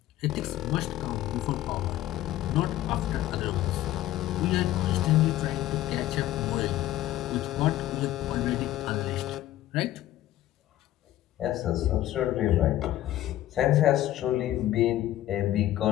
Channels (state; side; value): quieter; right; 14.1 dB